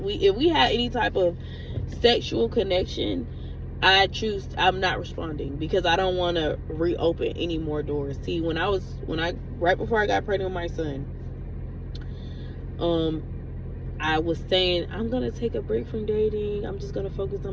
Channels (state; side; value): identical; both; correlation 1.00